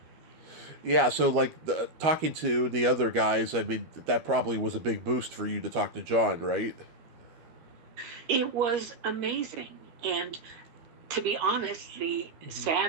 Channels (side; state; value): left; late; 12 ms